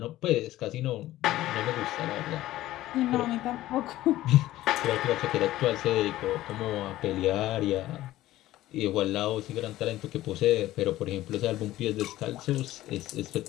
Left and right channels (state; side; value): quieter; right; 15.3 dB